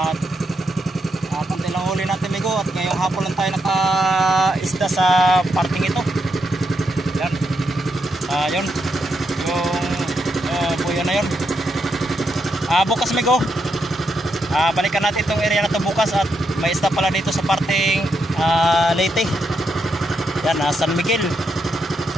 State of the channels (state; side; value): normal; both; correlation 0.81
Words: konti lang huli natin bigo. At ngayong hapon lang tayo naka-isda sa parting ito. Yan. Yun. Yung buyo na yun. Bukas bigo. Balikan natin itong area na ito bukas. At may isda pala dito sa parting Leyte. Yan, San Miguel,